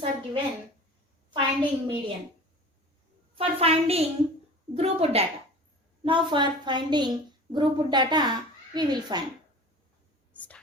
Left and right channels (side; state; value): both; normal; correlation 0.40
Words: are given, finding median. For finding grouped data. Now for finding grouped data, we will find.